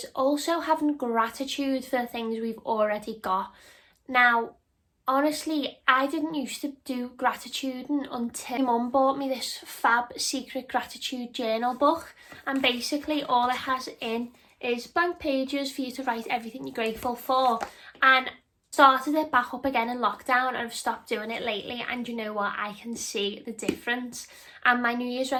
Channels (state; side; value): identical; both; correlation 1.00